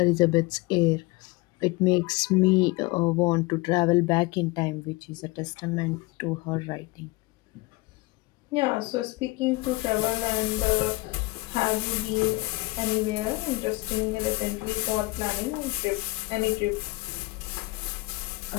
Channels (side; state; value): right; quieter; 22.7 dB